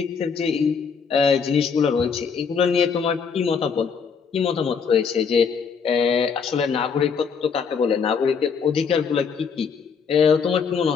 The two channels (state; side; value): quieter; right; 6.0 dB